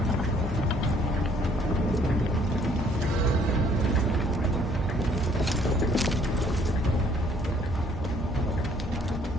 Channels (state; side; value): normal; both; correlation 0.62